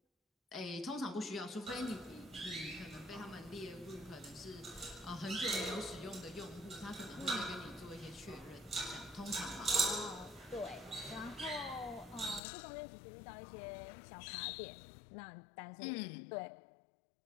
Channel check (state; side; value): drops out; right; at 12.4 s